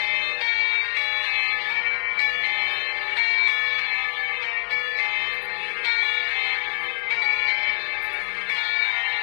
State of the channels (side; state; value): right; silent; 63 dB below the other